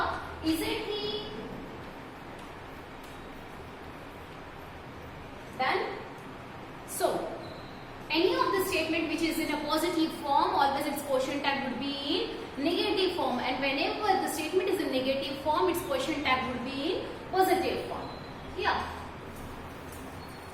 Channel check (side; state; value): both; identical; correlation 1.00